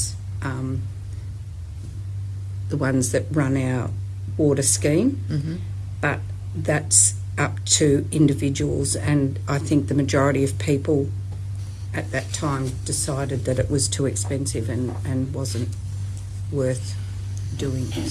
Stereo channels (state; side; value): identical; both; correlation 1.00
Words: the ones that run our water scheme, but that's up to individuals, and I think the majority of people at that time decided that it was too expensive and wasn't worth doing.